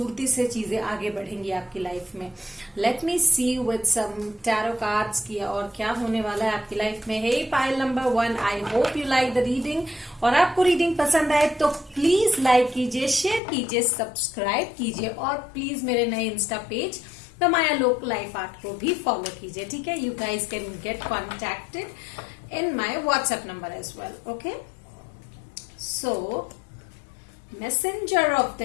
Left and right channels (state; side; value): drops out; right; at 13.4 s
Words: से चीजें आगे बढ़ेंगी आपकी लाइफ में। Let me see with some tarot cards की और क्या होने वाला है आपकी लाइफ में। Hey pile number 1, I hope you like the reading. और आपको रीडिंग पसंद आए तो प्लीज लाइक कीजिए, शेयर कीजिए, सब्सक्राइब कीजिए और प्लीज मेरे नए insta page the Mayalok life art को भी फॉलो कीजिए। ठीक है, you guys can get contacted in my WhatsApp number as well. Okay, so messenger of